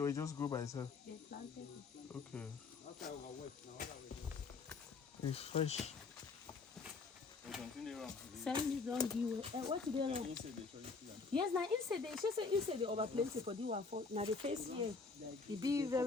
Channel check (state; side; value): quieter; right; 4.4 dB